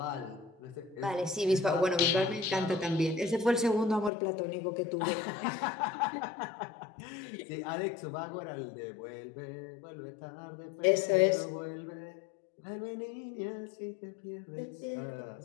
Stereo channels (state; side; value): drops out; right; at 4.1 s